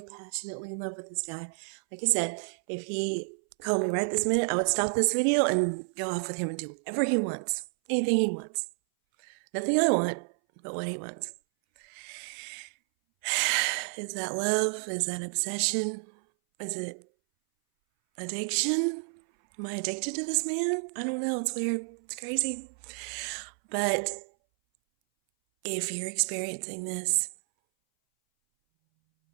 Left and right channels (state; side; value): silent; left; 58 dB below the other